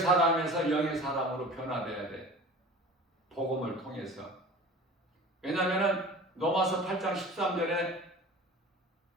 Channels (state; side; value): normal; both; correlation 0.40